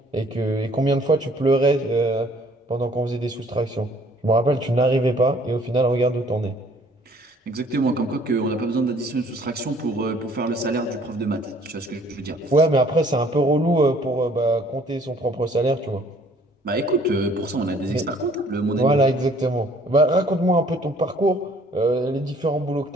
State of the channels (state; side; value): normal; both; correlation 0.58